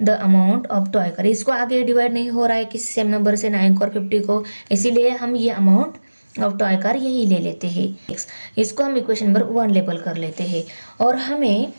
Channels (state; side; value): inverted; both; correlation -1.00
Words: the amount of toy car. इसको आगे डिवाइड नहीं हो रहा है किसी सेम नंबर से 9 और 50 को, इसीलिए हम ये अमाउंट ऑफ टॉय कार यही ले लेते हैं। इसको हम इक्वेशन नंबर 1 लेबल कर लेते हैं। और हमें